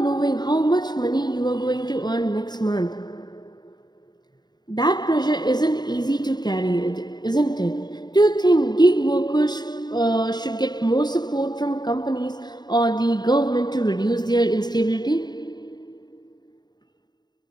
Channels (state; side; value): late; right; 0.20 ms